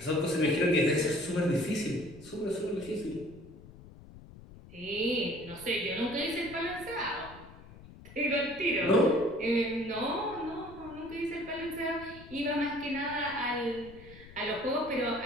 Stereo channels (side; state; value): left; noise; rumble, 18 dB below the sound